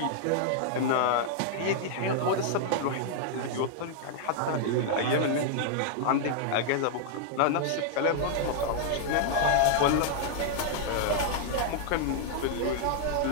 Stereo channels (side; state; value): both; different; correlation -0.01